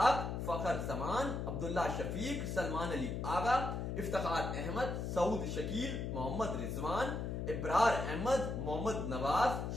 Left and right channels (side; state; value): left; noise; hum, 3 dB below the sound